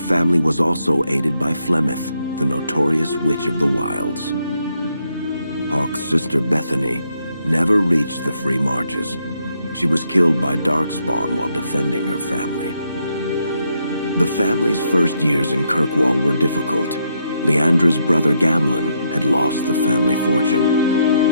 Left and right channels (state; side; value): inverted; both; correlation -0.77